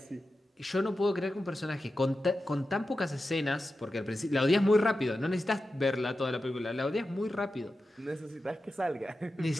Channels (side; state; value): both; normal; correlation 0.92